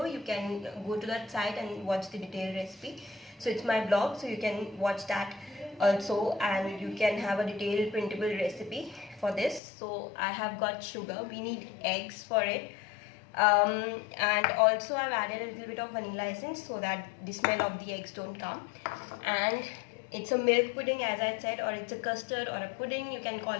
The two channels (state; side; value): drops out; right; at 9.6 s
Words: You can go to that site and watch the detailed recipe. So it's my blog, so you can watch that also, and you can have a detailed printable recipe for this. So I have got sugar. We need eggs for it, and also I've added a little bit of vanilla essence so that the smell of the eggs don't come. And it's a milk pudding, as I said, or it's a custard or a pudding, you can call